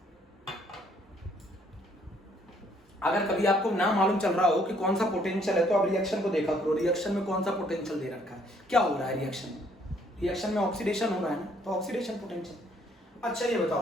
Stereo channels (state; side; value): normal; both; correlation 0.65